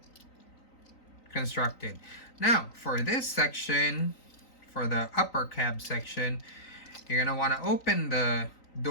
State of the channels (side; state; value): right; late; 3.9 ms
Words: constructed. Now, for this section, for the upper cab section, you're going to want to open the